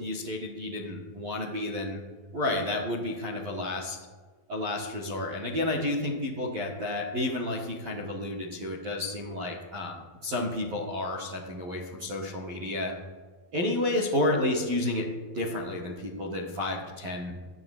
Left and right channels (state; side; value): late; left; 12 ms